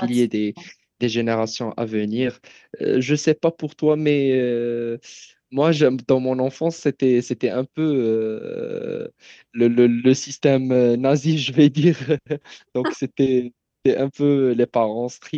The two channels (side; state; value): both; identical; correlation 1.00